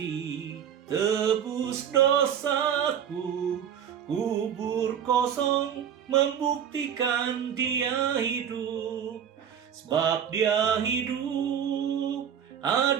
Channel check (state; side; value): quieter; left; 8.7 dB